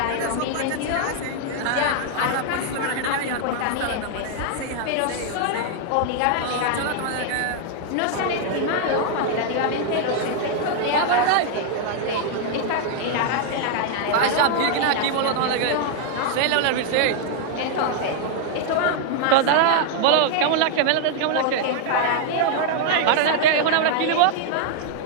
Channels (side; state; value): both; different; correlation 0.00